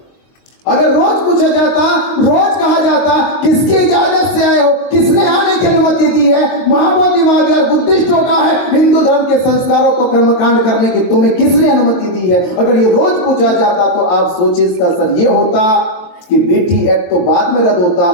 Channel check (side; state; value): right; late; 22 ms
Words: अगर रोज पूछा जाता, रोज कहा जाता किसकी इजाजत से आए हो, किसने आने की अनुमति दी है, महाबोधि महाविहार बुद्धिस्टों का है, हिंदू धर्म के संस्कारों को कर्मकांड करने की तुम्हें किसने अनुमति दी है, अगर ये रोज पूछा जाता तो आप सोचिए इसका असर ये होता कि बेटी एक्ट तो बाद में रद्द होता,